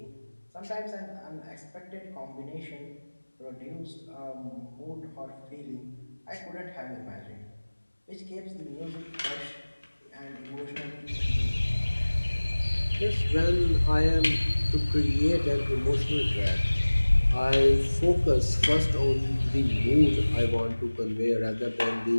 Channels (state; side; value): inverted; both; correlation -1.00